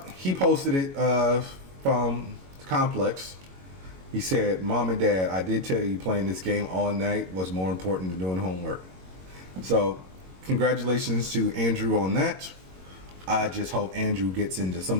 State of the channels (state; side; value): late; left; 22 ms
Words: he posted it from Complex. He said, "Mom and Dad, I did tell you playing this game all night was more important than doing homework." So, congratulations to Andrew on that. I just hope Andrew gets into some